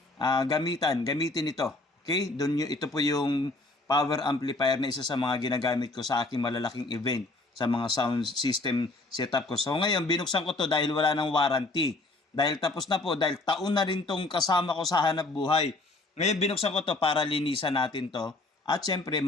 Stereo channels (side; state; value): right; quieter; 3.0 dB